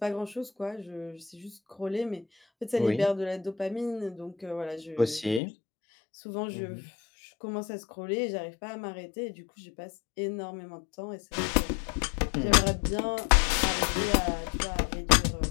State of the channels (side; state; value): right; drops out; at 5.4 s